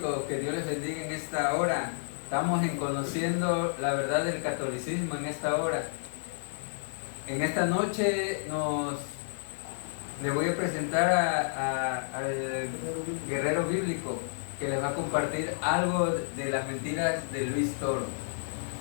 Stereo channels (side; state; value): right; silent; 57 dB below the other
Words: que Dios les bendiga en esta hora. Estamos en conociendo la verdad del catolicismo en esta hora. En esta noche le voy a presentar al guerrero bíblico que les va a compartir algo de las mentiras de Luis Toro.